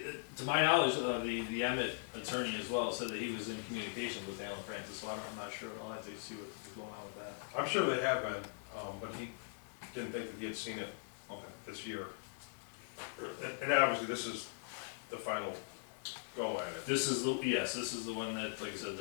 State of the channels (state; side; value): silent; right; digital silence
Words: to my knowledge, the Emmett attorney as well said that he was in communication with Alan Francis, so I'm not sure. I'll have to see what's going on with that. I'm sure they have been, but he didn't think that he had seen it this year. And obviously, this is the final go at it. This is the one that, like I said,